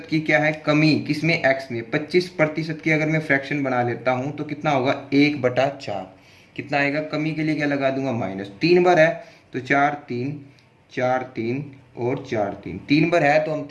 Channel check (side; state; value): both; identical; correlation 1.00